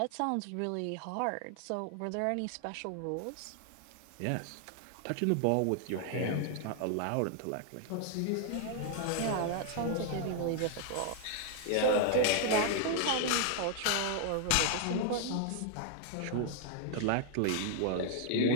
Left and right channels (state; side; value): different; both; correlation 0.00